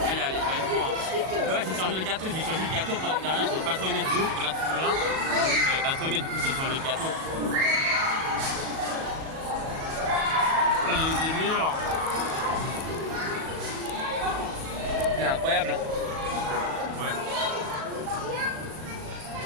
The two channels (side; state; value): left; late; 37 ms